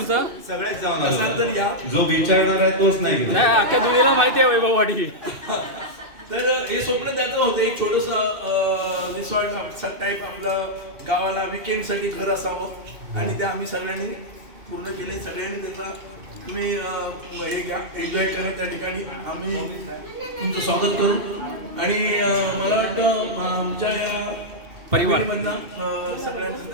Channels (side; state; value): left; late; 2.6 ms